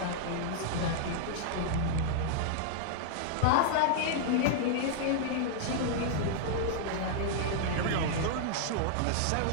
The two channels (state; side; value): different; both; correlation -0.01